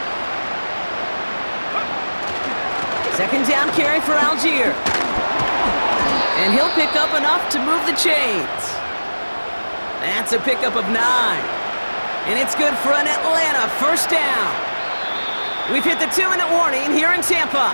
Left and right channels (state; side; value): inverted; both; correlation -1.00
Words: Second down carry for Algier. And he'll pick up enough to move the chains. That's a pickup of 9. And it's good for an Atlanta first down. We've hit the 2-minute warning here in Tampa.